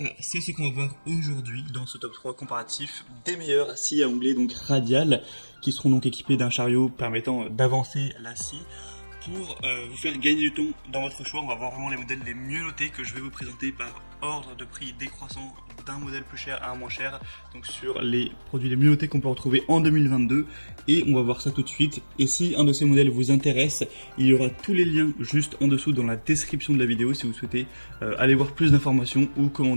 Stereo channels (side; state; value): both; inverted; correlation -1.00